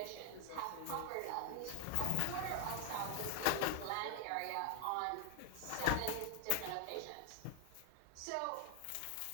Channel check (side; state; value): both; different; correlation 0.01